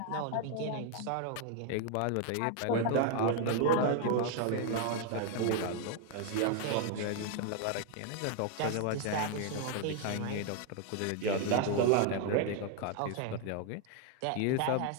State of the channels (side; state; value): both; different; correlation 0.00